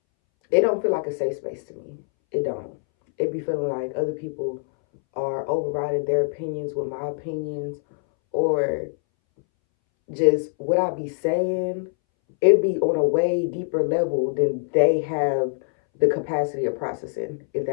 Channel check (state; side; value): silent; right; 62 dB below the other